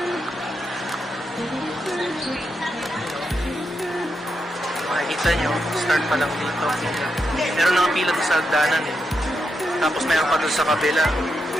Makikita nyo, start pa lang dito. Meron nakapila doon sa hagdanan eh. Tapos meron pa doon sa kabila.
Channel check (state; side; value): normal; both; correlation 0.84